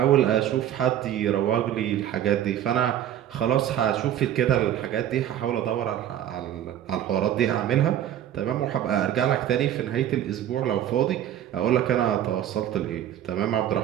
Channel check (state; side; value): quieter; left; 11.1 dB